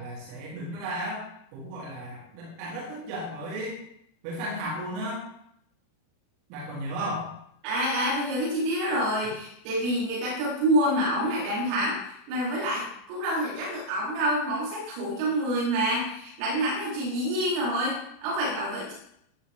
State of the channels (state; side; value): late; left; 37 ms